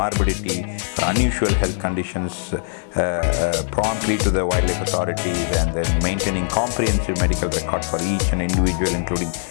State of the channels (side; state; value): right; silent; 65 dB below the other